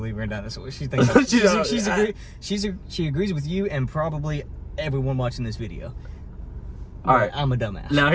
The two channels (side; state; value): both; identical; correlation 1.00